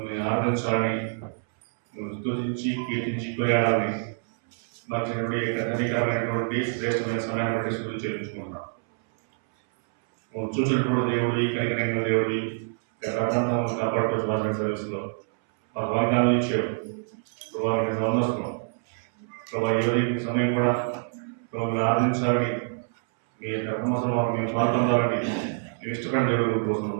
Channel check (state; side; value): silent; left; 61 dB below the other